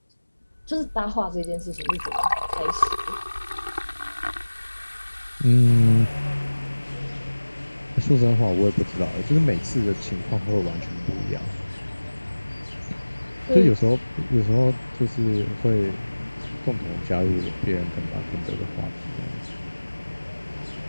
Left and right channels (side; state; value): both; inverted; correlation -1.00